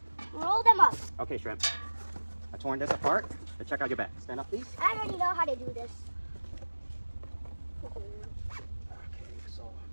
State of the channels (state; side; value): inverted; both; correlation -1.00